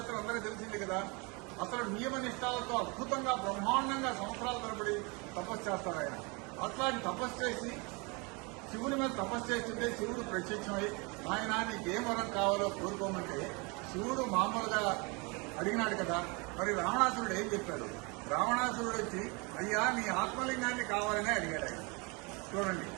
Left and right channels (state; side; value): quieter; left; 29.5 dB